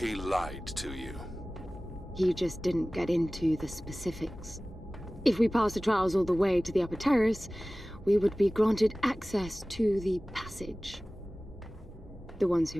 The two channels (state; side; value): normal; both; correlation 0.98